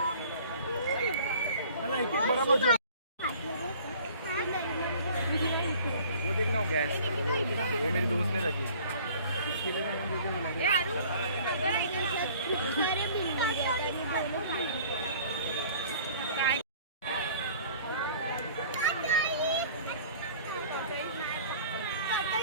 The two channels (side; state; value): both; inverted; correlation -0.50